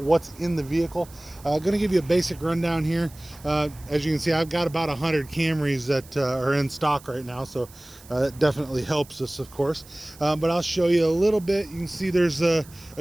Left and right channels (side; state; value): right; noise; hiss, 22 dB below the sound